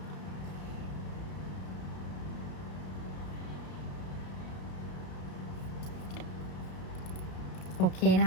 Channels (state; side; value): late; right; 33 ms